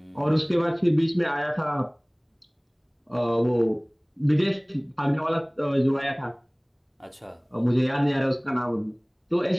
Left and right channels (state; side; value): identical; both; correlation 1.00